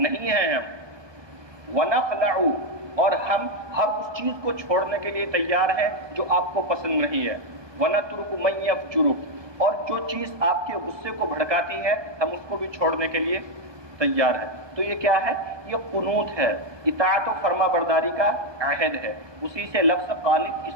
نہیں ہیں ہم. ونخلع، اور ہم ہر اس چیز کو چھوڑنے کے لیے تیار ہیں جو آپ کو پسند نہیں ہے. ونترک من یفجرک، اور جو چیز آپ کے غصے کو بھڑکاتی ہے ہم اس کو بھی چھوڑنے کے لیے تیار ہیں. تو یہ کیا ہے؟ یہ قنوت ہے، اطاعت و فرما برداری کا عہد ہے. اسی سے لفظ قانت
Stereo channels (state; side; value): late; left; 1.2 ms